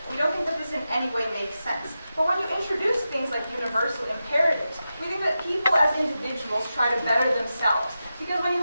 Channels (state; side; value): inverted; both; correlation -0.91